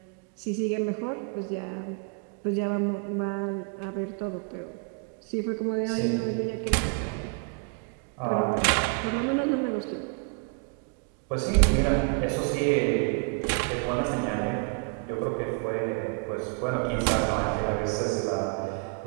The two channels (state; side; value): quieter; left; 38.7 dB